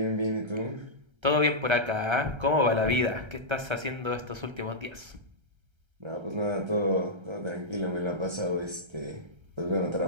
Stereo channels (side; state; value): left; late; 1.3 ms